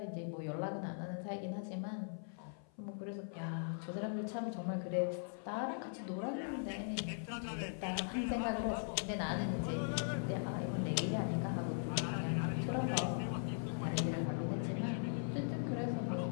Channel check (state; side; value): silent; right; 51 dB below the other